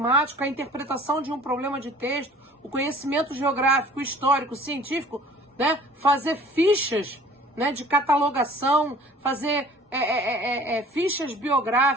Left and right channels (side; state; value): both; normal; correlation 0.49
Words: a interpretação de um problema de texto, o conhecimento geográfico, histórico, científico, né, fazer fichas, né, de catalogação, fazer fichas